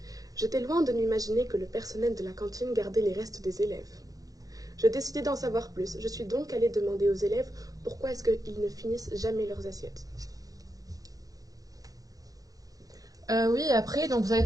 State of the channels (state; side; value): late; left; 0.17 ms